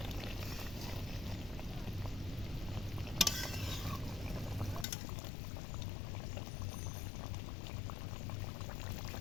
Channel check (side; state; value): right; drops out; at 4.9 s